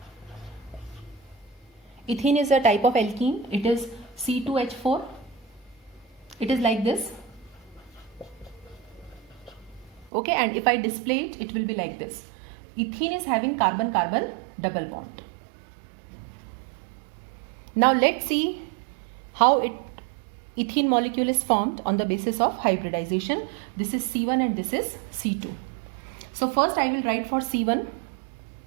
Ethene is a type of alkene. It is C2H4. It is like this. Okay, and if I display it, it will be like this. Ethene is having carbon-carbon double bond. Now let's see how ethene molecule is formed on the basis of hybridization. This is C1 and this is C2. So first I will write for C1.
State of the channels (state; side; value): drops out; left; at 10.1 s